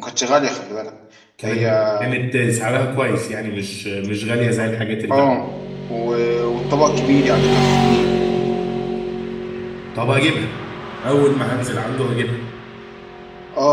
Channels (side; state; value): both; identical; correlation 1.00